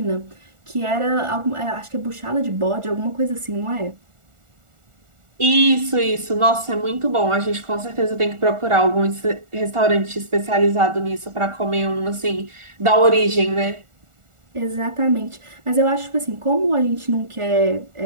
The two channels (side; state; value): left; late; 1.4 ms